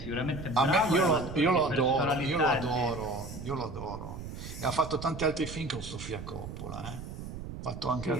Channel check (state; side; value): noise; right; rumble, 9 dB below the sound